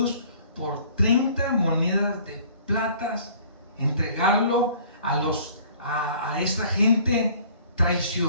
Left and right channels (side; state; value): both; inverted; correlation -0.53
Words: por 30 monedas de plata, entregarlo a esta gente,